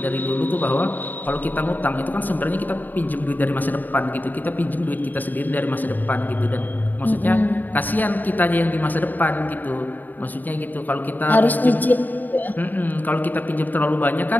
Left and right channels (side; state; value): right; late; 0.087 ms